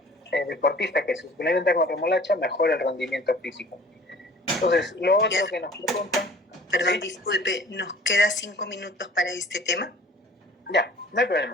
deportistas que se suplementan con remolacha mejora el rendimiento físico. Entonces, lo otro que nos preguntan... Perdón, ¿sí? Disculpe, ¿nos queda 5 minutos para este tema? Ya, no hay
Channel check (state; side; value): normal; both; correlation 0.48